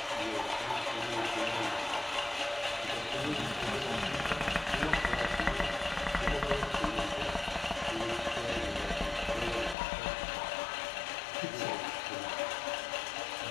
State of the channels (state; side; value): drops out; right; at 9.8 s